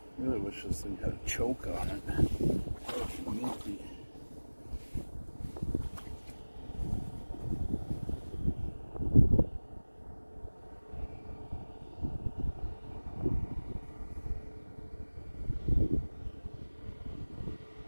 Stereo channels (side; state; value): both; inverted; correlation -1.00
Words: I really wish this thing had a choke on it. Minty.